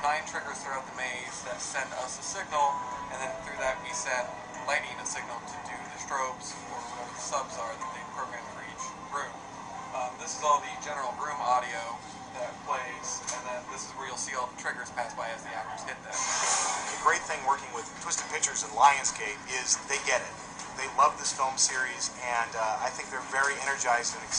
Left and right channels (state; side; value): identical; both; correlation 1.00